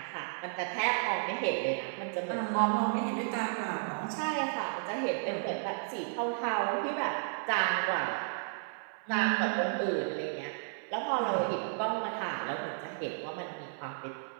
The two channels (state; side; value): silent; left; 56 dB below the other